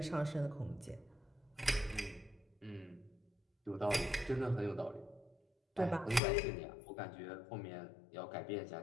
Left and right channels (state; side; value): drops out; right; at 6.2 s